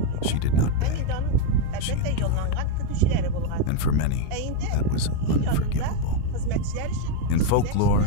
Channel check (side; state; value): both; different; correlation 0.02